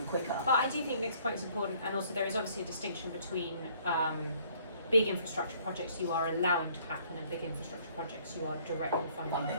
quicker. but I do think Nick's point is important, and also there is obviously a distinction between big infrastructure projects you are allowing to happen and big infrastructure projects you are directly funding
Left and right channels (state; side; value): inverted; both; correlation -0.61